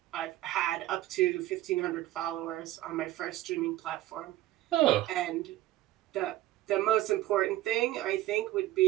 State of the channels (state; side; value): quieter; left; 15.2 dB